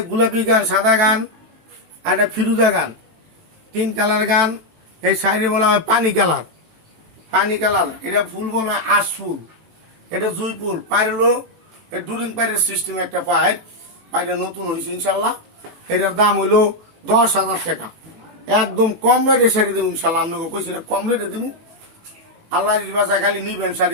গোলাপি গান, সাদা গান, আর একটা ফিরুজা গান, 3 কালার গান। এই শাড়ি বলা হয় পানি কালার। পানি কালার। এটা ফুল বলা হয় আশ ফুল। এটা জুই ফুল। পায়ের হলো ডুরিং পায়ের সিস্টেম, একটা পায়ের পায়ের নতুন হয়েছে ইনশাল্লাহ। এটার দাম হইলো 10,000 টাকা। একদম কম রেটে শাড়ি দেবো ইনশাল্লাহ। আপনাকে কইছি না কম রেটে দেবো। আল্লাহ বাসায় খালি নিবেন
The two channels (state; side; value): late; left; 19 ms